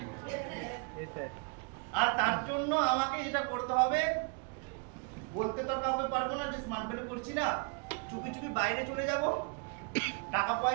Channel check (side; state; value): left; quieter; 36.0 dB